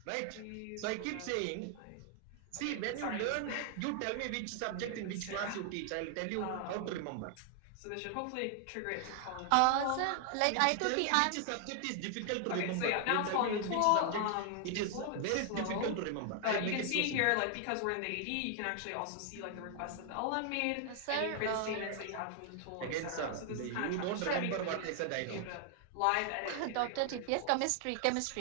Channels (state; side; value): different; both; correlation 0.00